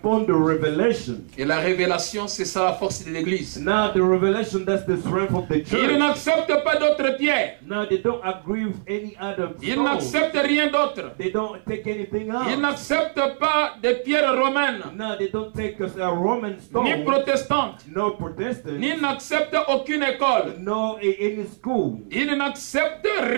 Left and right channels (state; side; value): silent; left; 61 dB below the other